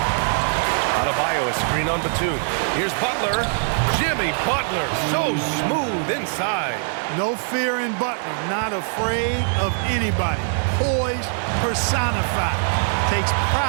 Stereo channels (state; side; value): silent; left; digital silence